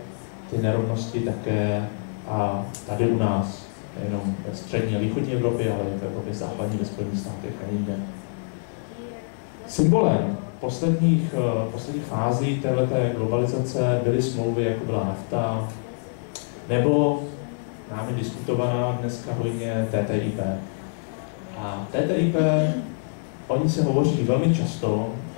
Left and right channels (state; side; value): silent; right; digital silence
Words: ty nerovnosti také a tady u nás, nejenom ve Střední a Východní Evropě, ale i v Evropě západní, ve Spojených státech a jinde. Symbolem posledních fází této globalizace byly smlouvy, jako byla NAFTA, nebo námi diskutovaná dneska hodně TTIP. A TTIP, o ní se hovoří velmi často